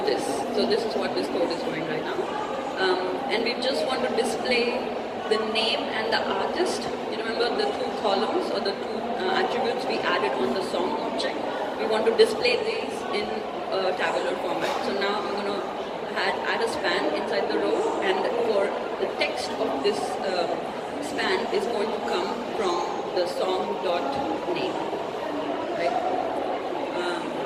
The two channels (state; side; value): identical; both; correlation 1.00